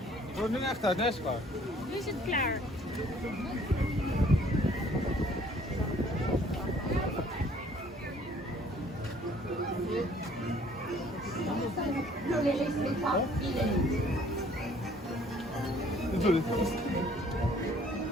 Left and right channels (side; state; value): both; normal; correlation 0.58